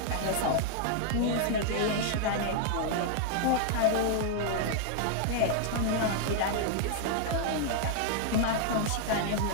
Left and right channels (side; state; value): both; different; correlation 0.00